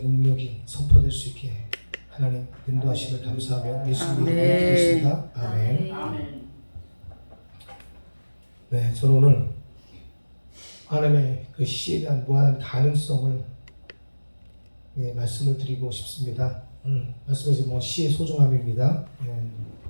능력이 선포될 수 있게 하나님 인도하심을 감사하며 예수님의 이름으로 기도했습니다. 아멘. 네, 저는 오늘 하나님의 그 시에 대한 무한한 가능성을 말씀을 드리고 싶습니다. 말씀에서 뭐 시의 소중함입니다.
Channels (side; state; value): both; inverted; correlation -1.00